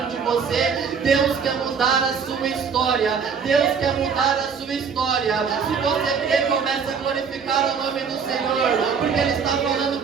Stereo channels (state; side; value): quieter; left; 6.1 dB